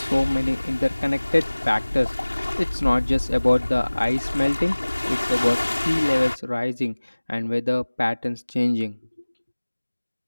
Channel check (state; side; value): inverted; both; correlation -1.00